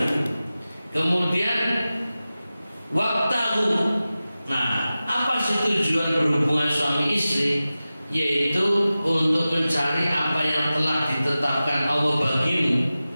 Kemudian waktahu. Nah, apa sih tujuan berhubungan suami istri? Yaitu untuk mencari apa yang telah ditetapkan Allah bagimu,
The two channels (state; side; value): inverted; both; correlation -0.95